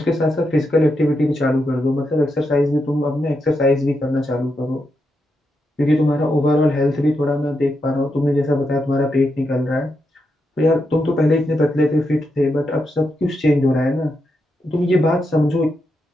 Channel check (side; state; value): both; normal; correlation 0.84